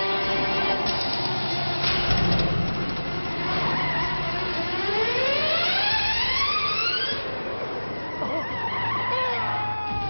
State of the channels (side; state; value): both; inverted; correlation -1.00